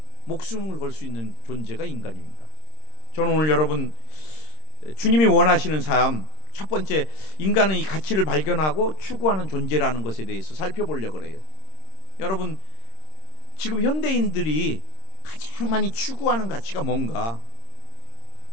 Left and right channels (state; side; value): late; right; 26 ms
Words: 목숨을 걸 수 있는 존재가 인간입니다. 저는 오늘 여러분, 주님이 원하시는 삶, 첫 번째, 인간은 이 가치를 발견하고 추구하는 존재라는 것에 대해서 살펴보려고 그래요. 여러분, 지금 현대인들이 가장 많이 추구하는 가치가 뭔가?